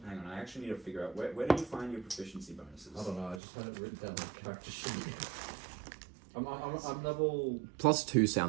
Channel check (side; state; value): left; drops out; at 3.4 s